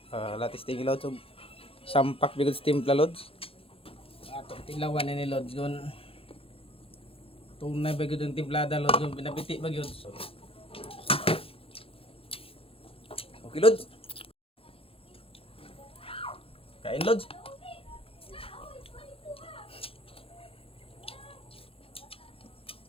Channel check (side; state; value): right; late; 0.27 ms